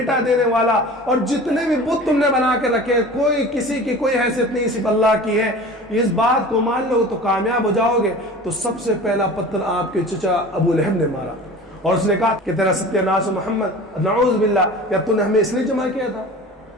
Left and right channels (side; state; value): both; normal; correlation 0.39